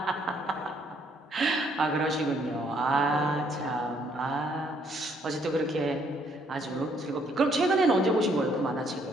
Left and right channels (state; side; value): normal; both; correlation 0.68